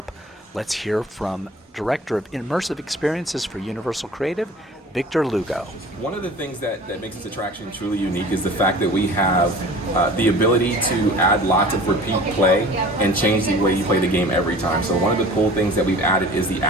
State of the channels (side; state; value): both; normal; correlation 0.43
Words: let's hear from Director of Immersive Experiences for Universal Creative, Victor Lugo. One of the things that makes this attraction truly unique is the fact that we have the ability to add lots of repeat play and change the way you play the game every time. So one of the cool things that we've added is the